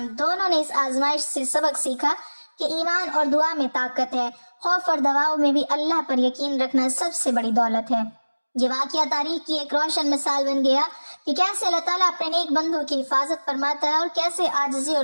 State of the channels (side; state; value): both; inverted; correlation -1.00